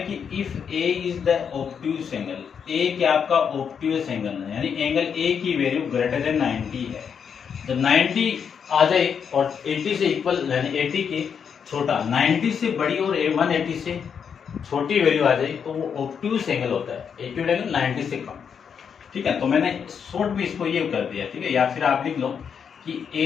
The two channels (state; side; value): quieter; right; 7.1 dB